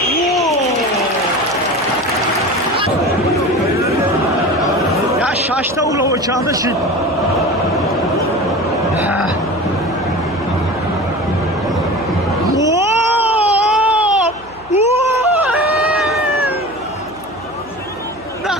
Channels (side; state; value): right; noise; hum, 24 dB below the sound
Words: Ya şaşta ula o çaldı şimdi.